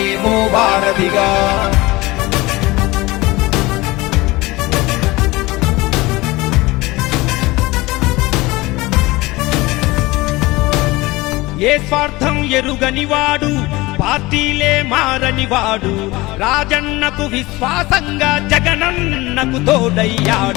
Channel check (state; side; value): quieter; right; 21.1 dB